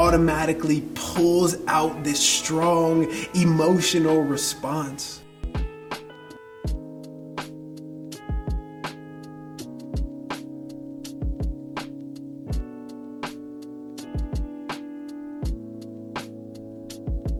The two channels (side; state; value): both; identical; correlation 1.00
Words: pulls out this strong emotional response?